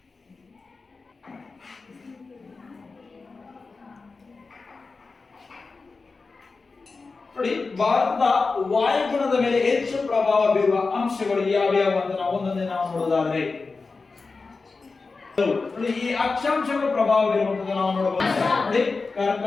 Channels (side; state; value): right; quieter; 4.1 dB